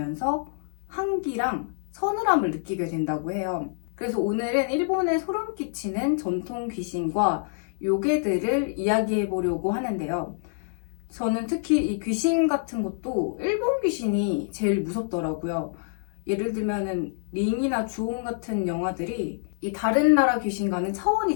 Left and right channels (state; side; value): silent; right; digital silence